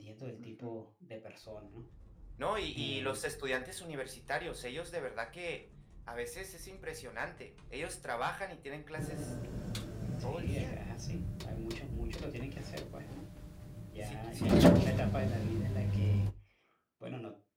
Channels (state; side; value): identical; both; correlation 1.00